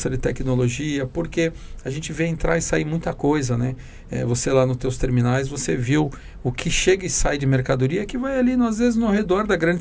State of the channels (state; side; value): identical; both; correlation 1.00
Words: de tecnologia, porque a gente vê entrar e sair muita coisa, né? Você lá nos teus terminais, você viu o que chega e sai de mercadoria que vai ali, às vezes, no redor da